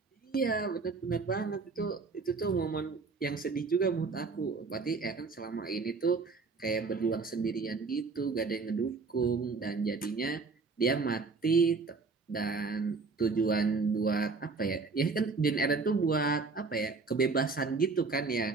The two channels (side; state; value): left; quieter; 4.3 dB